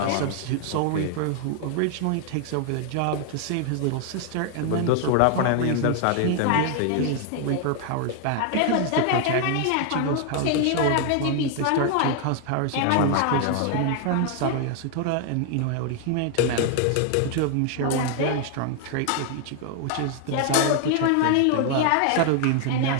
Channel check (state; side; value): different; both; correlation 0.00